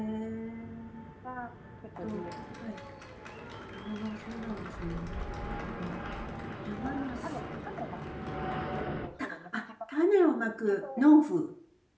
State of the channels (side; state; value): both; identical; correlation 1.00